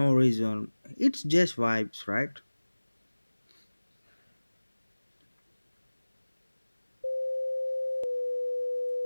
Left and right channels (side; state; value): both; inverted; correlation -1.00